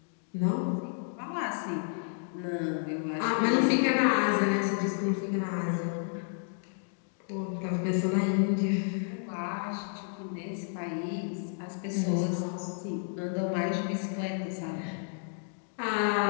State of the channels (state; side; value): silent; right; 57 dB below the other